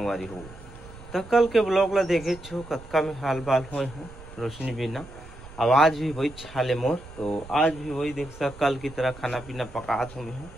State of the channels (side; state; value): right; noise; rumble, 17 dB below the sound